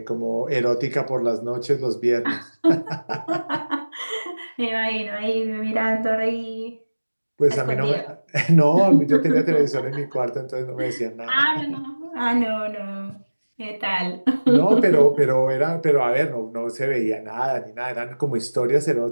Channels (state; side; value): inverted; both; correlation -1.00